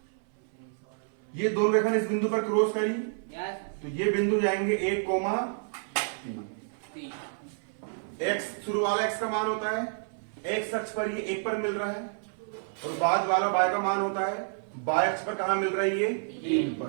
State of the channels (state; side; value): silent; left; 58 dB below the other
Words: ये दोनों रेखा इस बिंदु पर क्रॉस करी, तो ये बिंदु जाएंगे 1, 3। x शुरू वाला x का मान होता है, x अक्ष पर ये 1 पर मिल रहा है, और बाद वाला y का मान होता है y अक्ष पर कहां मिल रहा है? ये 3